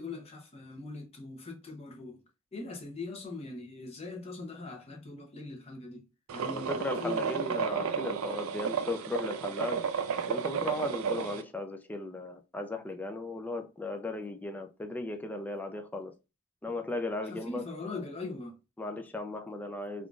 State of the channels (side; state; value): both; normal; correlation 0.16